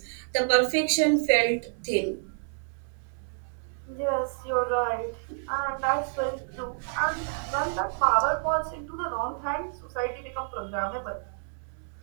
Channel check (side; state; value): left; silent; digital silence